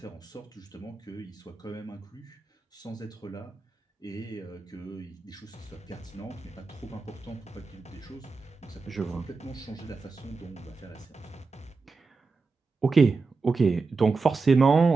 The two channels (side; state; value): left; quieter; 4.2 dB